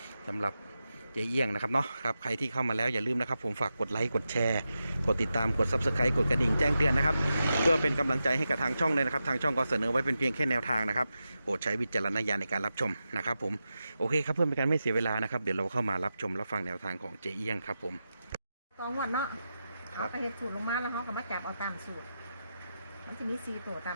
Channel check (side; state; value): both; inverted; correlation -0.90